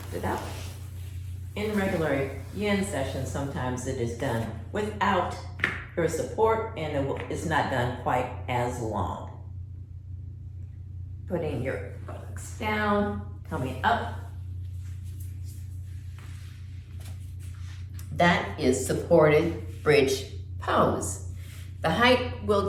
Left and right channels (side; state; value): both; identical; correlation 1.00